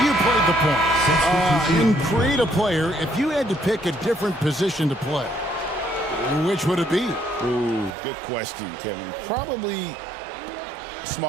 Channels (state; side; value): drops out; left; at 8.0 s